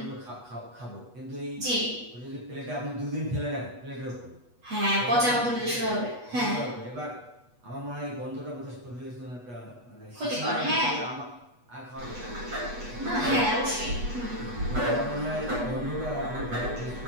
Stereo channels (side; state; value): left; late; 8.2 ms